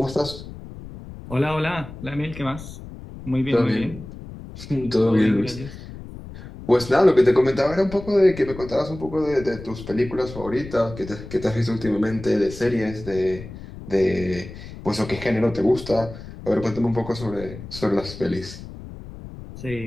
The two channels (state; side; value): noise; left; rumble, 13 dB below the sound